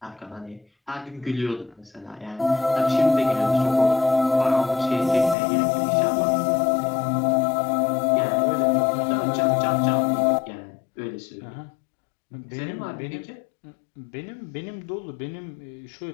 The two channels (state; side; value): drops out; right; at 5.4 s